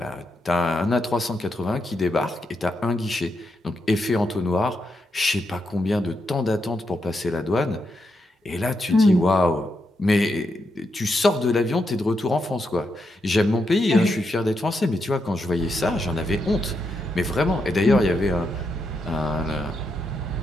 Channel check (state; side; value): normal; both; correlation 0.83